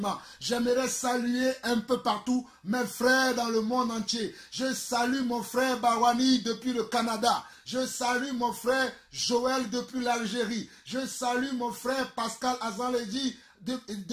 j'aimerais saluer un peu partout mes frères dans le monde entier. Je salue mon frère Barwani depuis le Canada. Je salue mon frère Joël depuis l'Algérie. Je salue mon frère Pascal Azanledi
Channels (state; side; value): identical; both; correlation 1.00